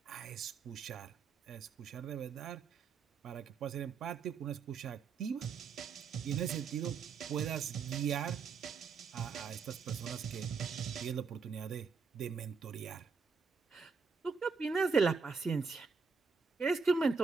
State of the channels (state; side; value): quieter; left; 5.2 dB